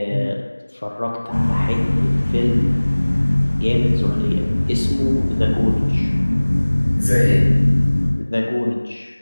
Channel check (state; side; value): inverted; both; correlation -1.00